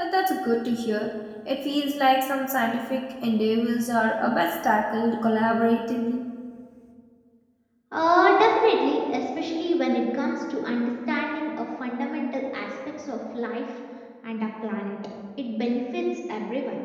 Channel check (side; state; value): both; identical; correlation 1.00